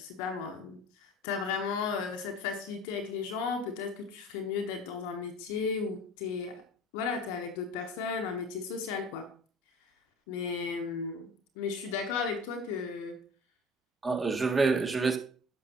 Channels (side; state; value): both; normal; correlation 0.41